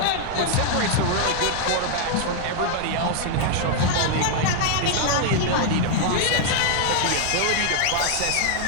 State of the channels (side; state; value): both; different; correlation 0.00